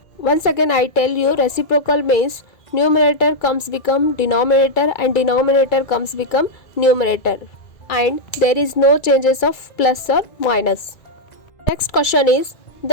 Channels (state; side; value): late; right; 2.3 ms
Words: Once again I tell you, reciprocal means numerator comes become denominator and denominator comes become numerator, and there is no changes of plus or minus. Next question is